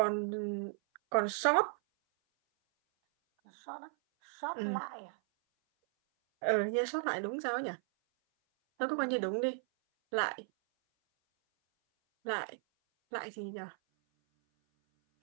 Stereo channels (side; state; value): left; silent; 54 dB below the other